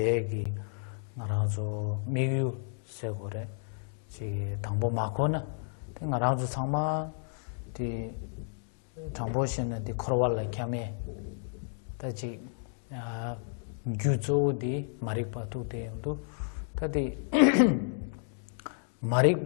나라서 미유 세고래 지 당보 마코나 나라서 상마 디 당보신의 디 코로발라 캠에 다지 아 규조디 마리파투 데도 다디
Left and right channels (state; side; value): silent; right; 57 dB below the other